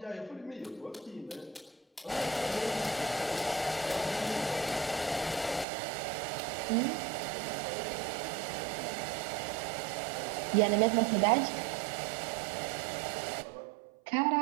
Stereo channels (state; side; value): drops out; left; at 5.7 s